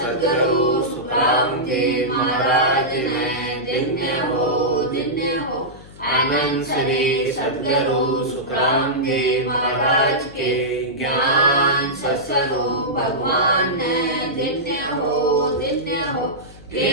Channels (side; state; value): left; noise; hum, 20 dB below the sound